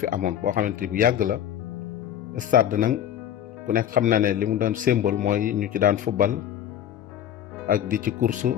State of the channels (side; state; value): right; quieter; 10.5 dB